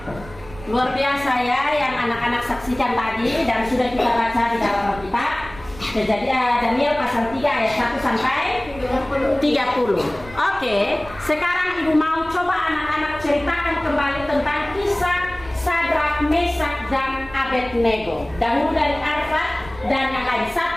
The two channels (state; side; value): noise; right; rumble, 18 dB below the sound